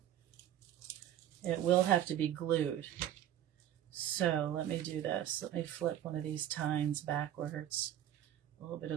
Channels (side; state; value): left; quieter; 11.5 dB